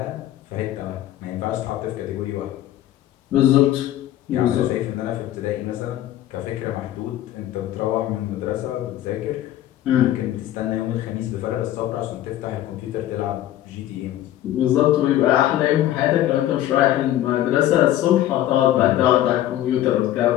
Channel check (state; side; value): quieter; right; 13.1 dB